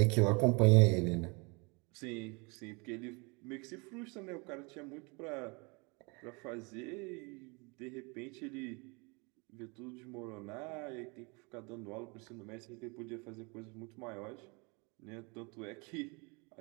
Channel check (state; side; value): quieter; left; 30.0 dB